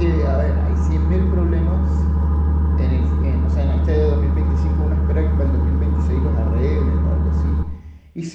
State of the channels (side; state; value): both; identical; correlation 1.00